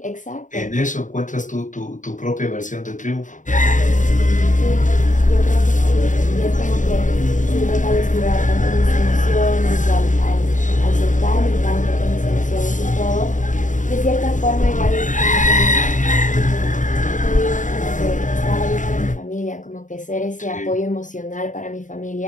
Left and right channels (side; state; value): right; late; 0.37 ms